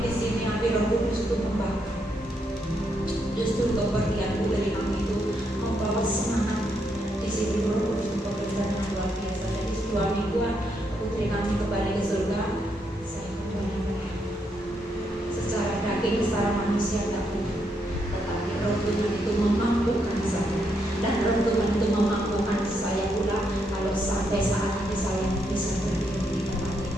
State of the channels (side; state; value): both; normal; correlation 0.78